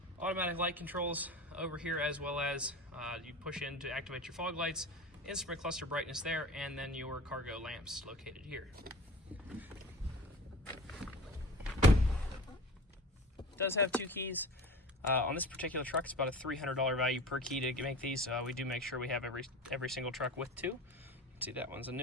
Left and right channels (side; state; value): both; normal; correlation 0.36